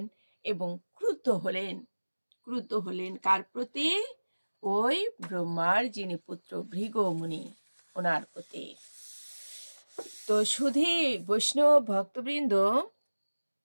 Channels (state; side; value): inverted; both; correlation -1.00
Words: এবং ক্রুদ্ধ হলেন কার প্রতি? ওই ব্রহ্মার যিনি পুত্র ভৃগুমুনি, ওনার প্রতি। তো শুধু বৈষ্ণব ভক্তবৃন্দ,